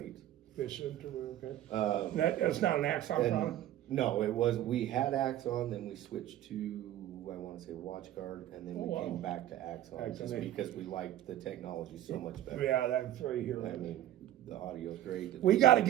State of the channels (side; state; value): left; quieter; 12.7 dB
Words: Efficient or okay. That's not an Axon And product? no, we had Axon, then we switched to, I wanna say WatchGuard, and then we Oh, wow. came back to Axon, just Axon. because we liked the technology so much better. Yeah, that's right here. I mean, the audio's great. We got to